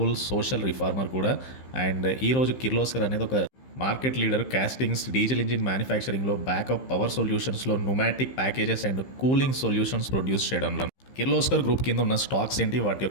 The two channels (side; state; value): right; late; 15 ms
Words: సోషల్ రిఫార్మర్ కూడా. అండ్ ఈరోజు కిర్లోస్కర్ అనేది ఒక market leader. Castings, diesel engine మ్యానుఫ్యాక్చరింగ్లో, బ్యాకప్ పవర్ సొల్యూషన్స్లో, pneumatic packages and cooling solutions produce చేయడంలో. కిర్లోస్కర్ గ్రూప్ కింద ఉన్న స్టాక్స్ ఏంటి, వాటి